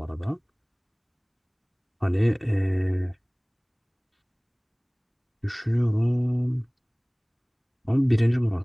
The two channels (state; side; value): identical; both; correlation 1.00